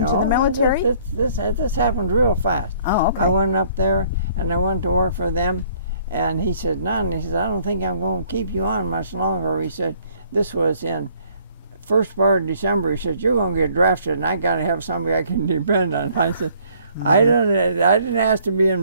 No, the military? this happened real fast. Oh, okay. I went up there, and I went to work for them, and he said, None, he said, I don't think I'm going to keep you on much longer. He said, this was in first part of December. He said, you're going to get drafted, and I got to have somebody I can depend on. I said, I didn't ask to be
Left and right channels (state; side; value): inverted; both; correlation -0.60